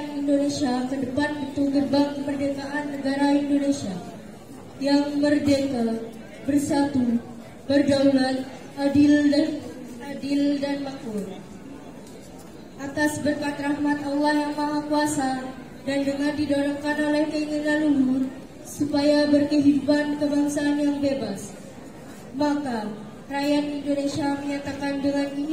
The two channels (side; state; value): both; identical; correlation 1.00